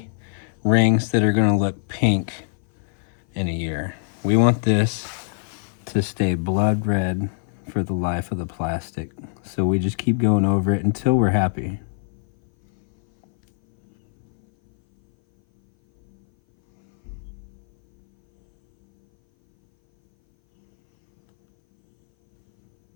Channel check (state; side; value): silent; right; 59 dB below the other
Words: rings that are going to look pink in a year. We want this to stay blood red for the life of the plastic. So we just keep going over it until we're happy.